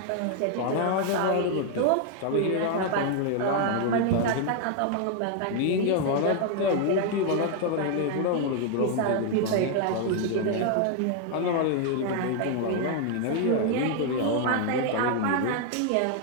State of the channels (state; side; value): different; both; correlation 0.00